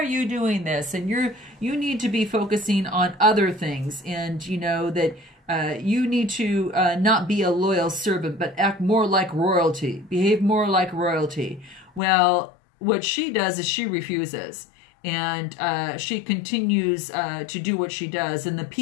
you doing this? And you need to be focusing on other things, and that you need to not be a loyal servant, but act more like royalty, behave more like royalty. Well, what she does is she refuses. And she continues to do what she does. And the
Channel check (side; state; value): right; drops out; at 12.0 s